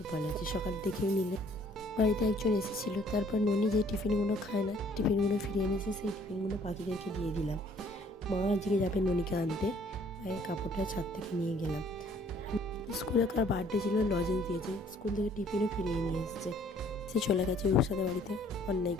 ভালো আছি। সকাল দেখেই নিলে বাড়িতে একজন এসেছিল, তারপর ননি যে টিফিনগুলো খায় না, টিফিনগুলো ফিরিয়ে এনেছে। সেই টিফিনগুলো পাখিদেরকে দিয়ে দিলাম। মা আজকে যাবে ননিকে আনতে, মায়ের কাপড়টা ছাদ থেকে নিয়ে গেলাম। স্কুলে কার বার্থডে ছিল, লজেন্স দিয়েছে, স্কুল থেকে টিফিনও ফিরিয়ে নিয়ে এসেছে। সে চলে গেছে রুসাদের বাড়িতে অন্যায়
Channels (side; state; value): both; normal; correlation 0.59